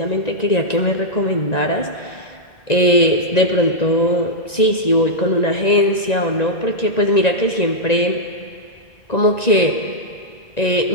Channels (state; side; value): late; right; 1.9 ms